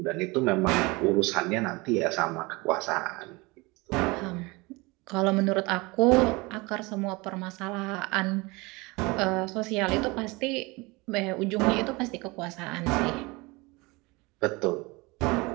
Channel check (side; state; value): left; quieter; 24.6 dB